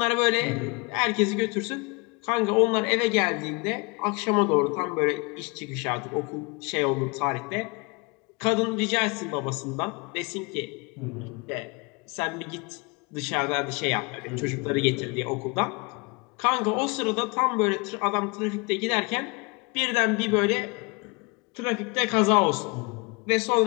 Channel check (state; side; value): quieter; right; 29.0 dB